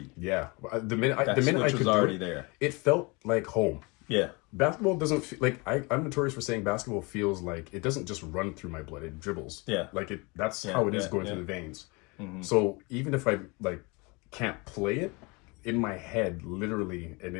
Yeah, the minute I could was already there. It felt like home. Yeah, basketball doesn't feel like I'm notorious for saying basketball feels like it doesn't just run through my blood; it dribbles. Yeah, like it. That's how it is going through the veins. So even if I like can't play it, in my head, literally,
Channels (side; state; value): right; quieter; 27.6 dB